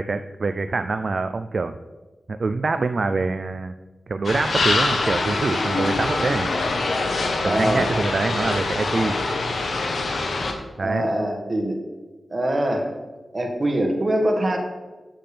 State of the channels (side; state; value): both; normal; correlation 0.91